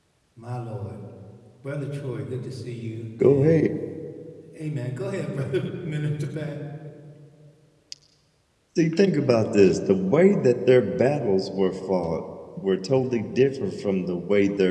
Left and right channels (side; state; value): both; identical; correlation 1.00